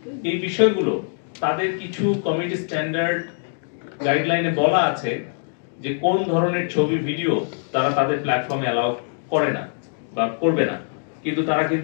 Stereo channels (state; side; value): silent; right; 63 dB below the other